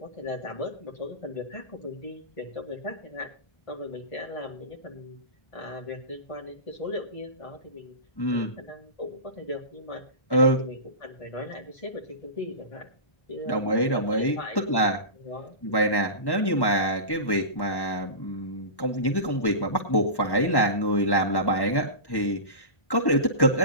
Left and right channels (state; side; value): late; right; 1.1 ms